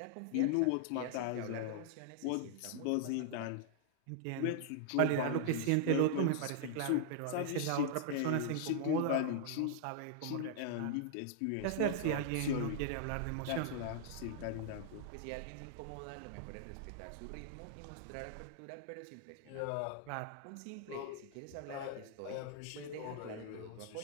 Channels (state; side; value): different; both; correlation -0.01